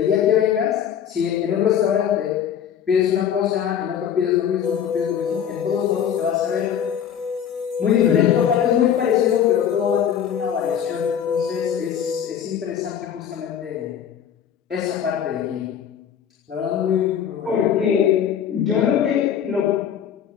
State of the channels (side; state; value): right; quieter; 8.8 dB